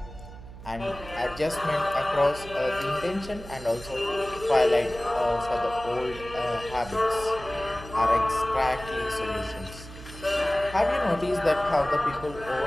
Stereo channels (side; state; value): right; noise; hum, 15 dB below the sound